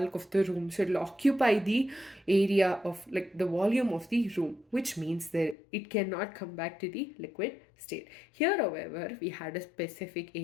of the room. So it will occupy the area of, like, the volume of the room, which means that it cannot come back to the liquid state. Here, however, we had a specific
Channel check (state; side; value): drops out; right; at 5.6 s